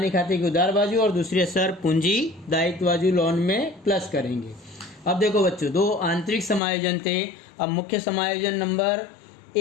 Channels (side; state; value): right; drops out; at 6.6 s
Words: खाते की उधार बाजू और दूसरी असर पूंजी दायित्व बाजू लोन में प्लस करेंगे। अब देखो बच्चों, दो आंतरिक समायोजन थे। अब मुख्य समायोजन नंबर